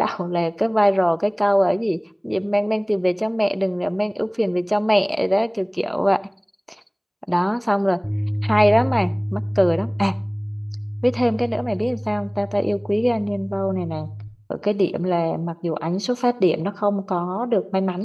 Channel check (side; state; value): both; identical; correlation 1.00